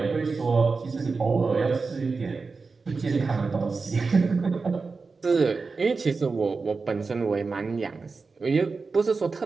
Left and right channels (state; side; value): quieter; left; 4.3 dB